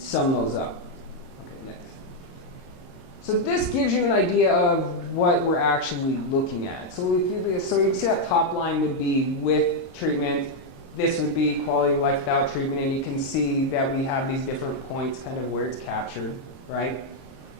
sum those up. Okay, next. So this gives you an idea of what we're actually looking at. So you can see that top line would be with treatment. This would be quality of life without treatment, and you can see that we have these different points kind of where it's captured, right?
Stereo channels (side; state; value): right; late; 22 ms